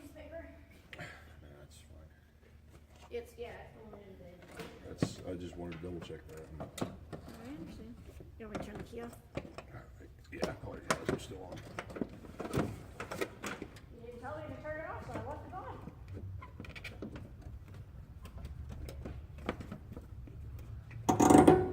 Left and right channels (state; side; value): identical; both; correlation 1.00